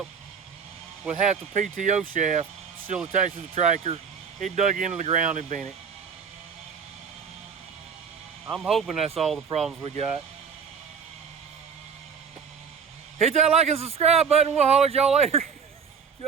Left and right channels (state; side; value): quieter; left; 6.5 dB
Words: with half the PTO shaft still attached to the tractor. It dug into the ground and bent it. I'm hoping that's all the problems we got. Hit that like and subscribe button. We'll holler at y'all later.